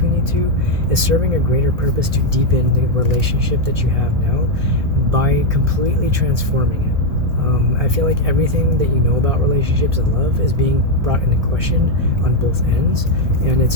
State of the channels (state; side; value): late; left; 1.6 ms